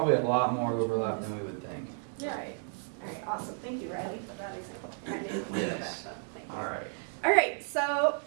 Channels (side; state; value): left; silent; 56 dB below the other